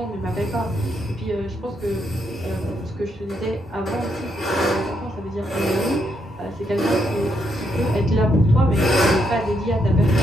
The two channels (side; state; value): both; normal; correlation 0.77